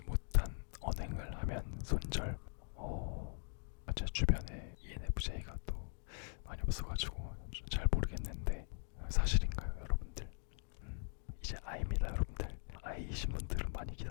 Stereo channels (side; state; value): right; silent; 50 dB below the other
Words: 못한 언행을 하면 손절. 제 주변에 ENFJ가 또 많이 없어가지고 잘 모르겠는데 사실인가요, 여러분들? 이제 I입니다, 여러분들. I이신 분들은 많이